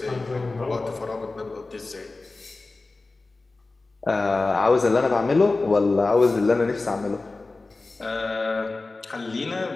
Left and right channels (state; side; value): quieter; right; 3.4 dB